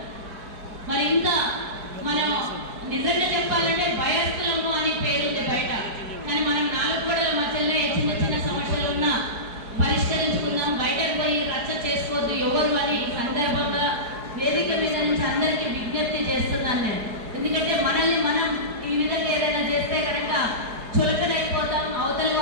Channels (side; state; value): left; late; 4.7 ms